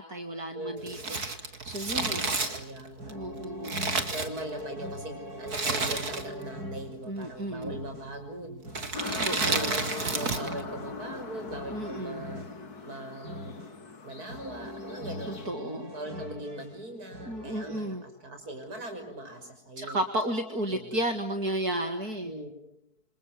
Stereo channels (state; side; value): late; left; 4.6 ms